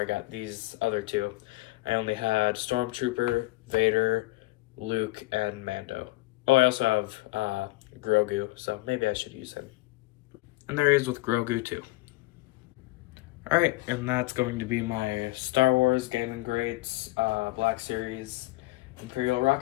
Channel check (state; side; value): quieter; right; 20.7 dB